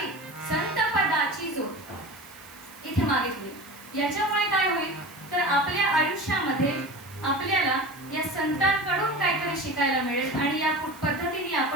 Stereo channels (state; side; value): noise; right; hiss, 21 dB below the sound